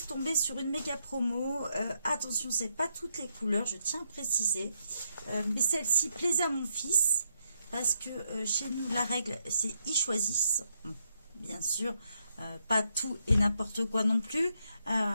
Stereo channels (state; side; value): inverted; both; correlation -0.79